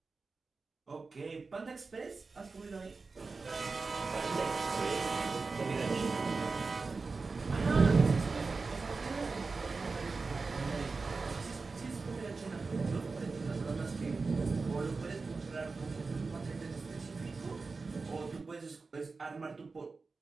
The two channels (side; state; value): left; quieter; 4.2 dB